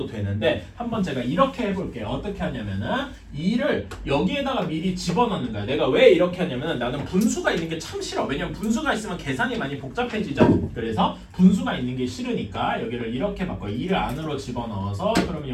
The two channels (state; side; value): identical; both; correlation 1.00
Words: 되는데 한번 제가 이렇게 해볼게요. 어떻게 하냐면은 2를 여기에다가 미리 집어넣는 거야. 내가 왜 이렇게 하냐면은 나는 분수가 있는 게 참 싫어. 왜냐면 분수가 있으면 계산이 많이 복잡해지죠. 그래서 분수가 있는 게 싫으니까 여기를 이렇게 바꿔요. 2를 안으로 집어넣어서 그러면